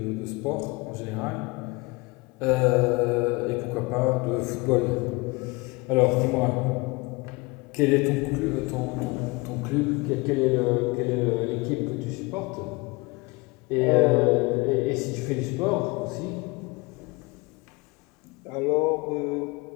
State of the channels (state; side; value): quieter; right; 25.2 dB